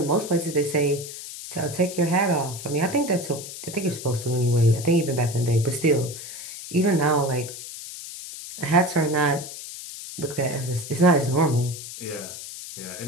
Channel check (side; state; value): left; noise; hiss, 11 dB below the sound